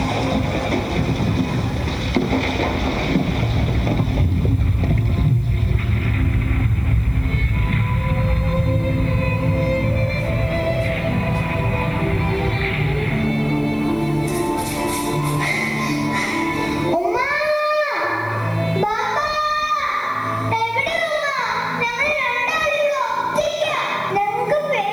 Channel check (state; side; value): noise; left; hiss, 28 dB below the sound